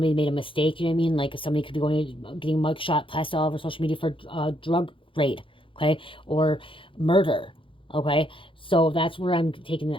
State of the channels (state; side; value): late; right; 0.25 ms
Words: made a mistake, you know what I mean? Like somebody could be getting a mugshot plastered all over social media for drug raid, okay? Or murder, okay? So that's where I'm taking